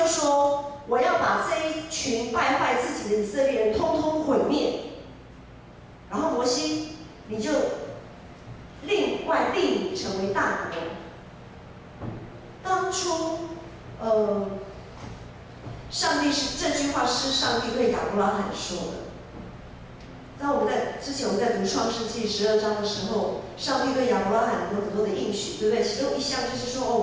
说：我要把这一群败坏自己的以色列人通通毁灭。然后摩西，你就另外立你成为大国。当初，上帝这句话是上帝对亚伯拉罕说的。在之前我们在读创世纪12章的时候，上帝对亚伯拉罕有很多的应许，对不对？其中一项就是说，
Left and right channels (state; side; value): identical; both; correlation 1.00